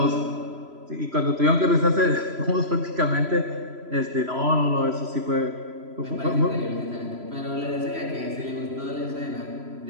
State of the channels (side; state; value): left; late; 3.0 ms